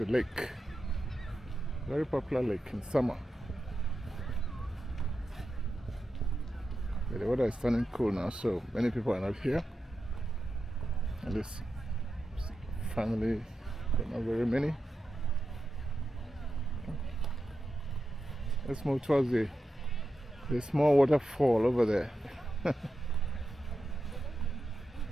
lake. Very popular lake in summer. Yeah, the weather is turning cool now, so many people are not here. At least family, but not very many. Let's move towards the small waterfall over there.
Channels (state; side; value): normal; both; correlation 0.89